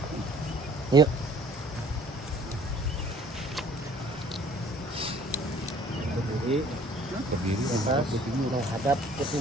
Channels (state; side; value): normal; both; correlation 0.54